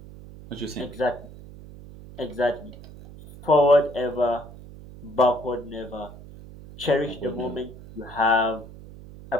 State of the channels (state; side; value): noise; right; hum, 17 dB below the sound